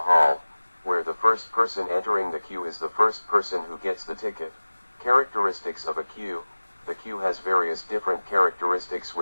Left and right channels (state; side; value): inverted; both; correlation -1.00